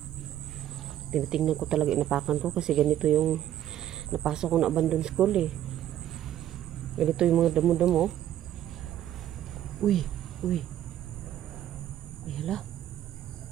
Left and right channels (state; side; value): quieter; left; 11.7 dB